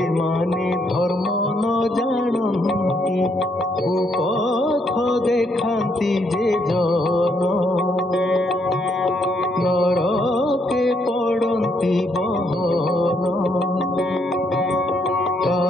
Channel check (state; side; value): normal; both; correlation 0.73